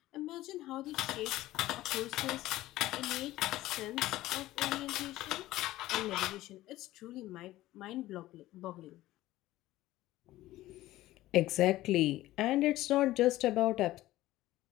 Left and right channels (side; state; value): right; quieter; 16.2 dB